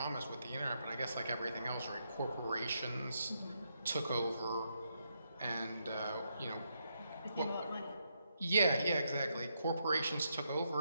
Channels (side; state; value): both; inverted; correlation -0.80